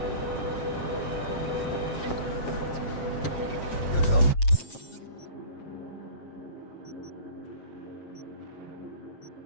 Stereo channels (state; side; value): late; right; 7.5 ms